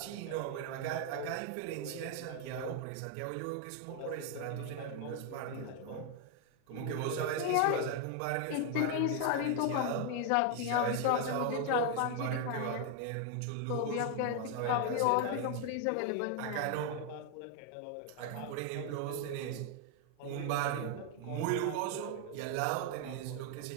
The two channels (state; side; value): different; both; correlation 0.00